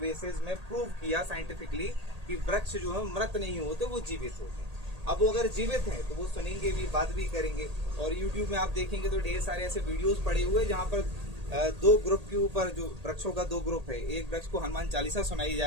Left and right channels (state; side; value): late; left; 1.8 ms